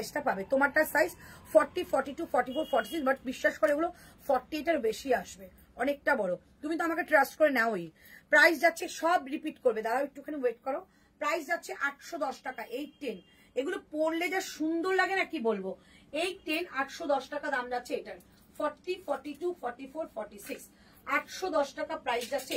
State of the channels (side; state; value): both; identical; correlation 1.00